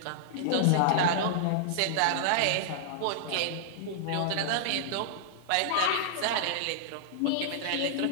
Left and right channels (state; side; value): different; both; correlation -0.01